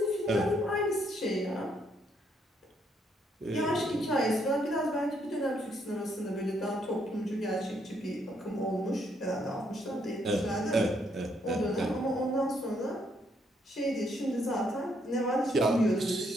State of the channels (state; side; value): normal; both; correlation 0.72